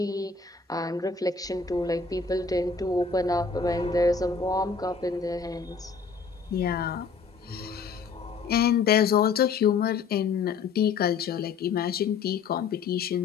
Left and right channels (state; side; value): quieter; right; 5.2 dB